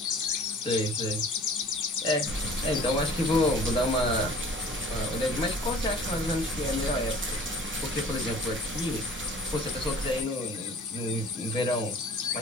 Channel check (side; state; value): both; normal; correlation 0.47